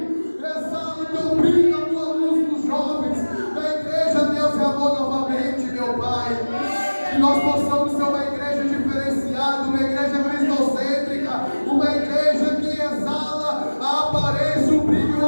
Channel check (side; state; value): both; inverted; correlation -1.00